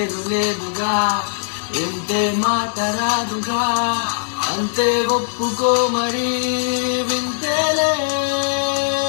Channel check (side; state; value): right; silent; digital silence